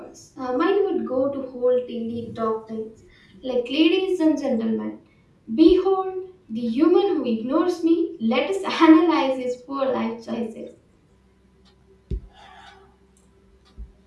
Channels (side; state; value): both; identical; correlation 1.00